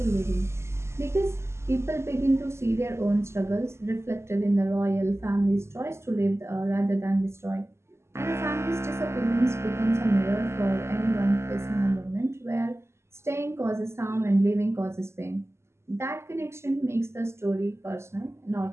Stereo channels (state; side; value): late; left; 0.13 ms